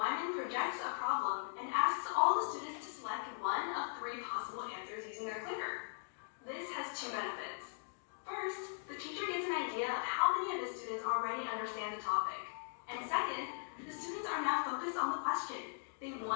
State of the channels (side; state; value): right; silent; digital silence